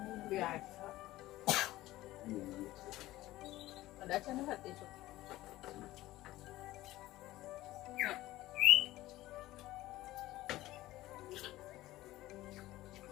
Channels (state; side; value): quieter; right; 16.7 dB